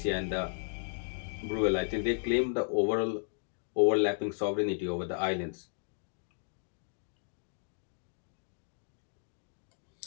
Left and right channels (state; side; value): silent; right; digital silence